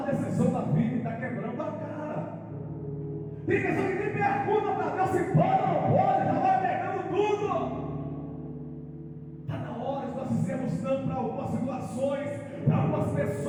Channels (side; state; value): both; identical; correlation 1.00